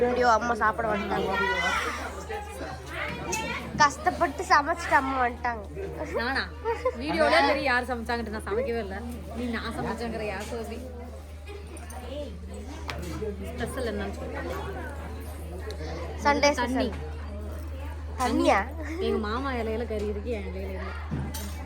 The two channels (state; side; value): identical; both; correlation 1.00